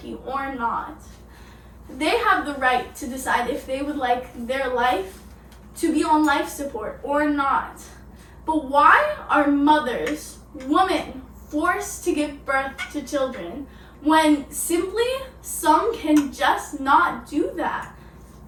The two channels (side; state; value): both; identical; correlation 1.00